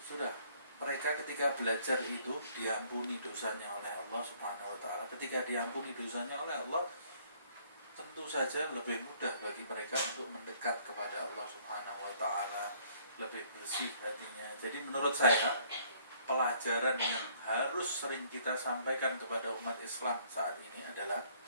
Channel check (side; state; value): both; inverted; correlation -0.61